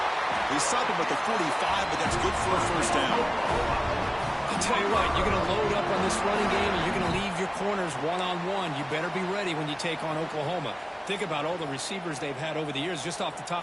They stop him at the 45, but that's good for a first down. I'll tell you what, you're going to load up on this running game and you're going to leave your corners one-on-one. You better be ready when you take on Oklahoma. Think about all the receivers they've had over the years. Just off the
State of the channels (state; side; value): identical; both; correlation 1.00